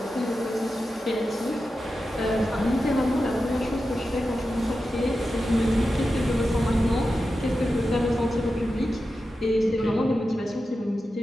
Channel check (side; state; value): both; normal; correlation 0.91